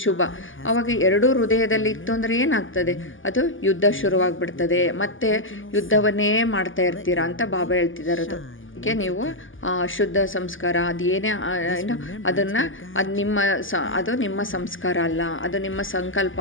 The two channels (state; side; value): late; right; 0.58 ms